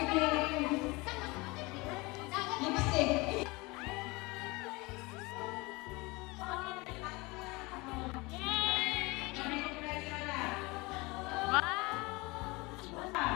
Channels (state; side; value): quieter; right; 24.3 dB